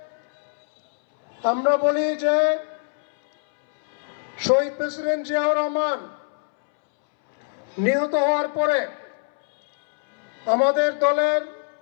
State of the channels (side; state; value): right; silent; 63 dB below the other